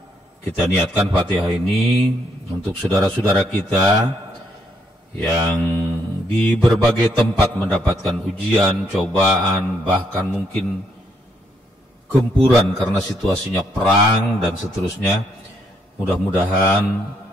kita niatkan Fatihah ini untuk saudara-saudara kita yang di berbagai tempat mendapatkan ujian, cobaan, bahkan mungkin gempuran karena situasinya perang dan seterusnya. Mudah-mudahan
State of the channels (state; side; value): normal; both; correlation 0.73